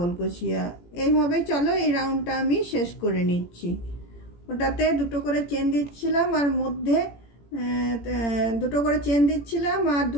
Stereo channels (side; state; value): right; late; 17 ms